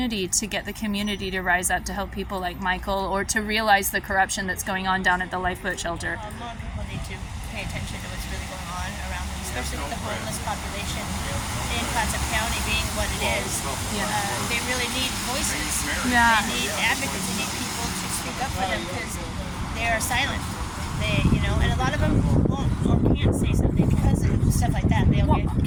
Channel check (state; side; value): identical; both; correlation 1.00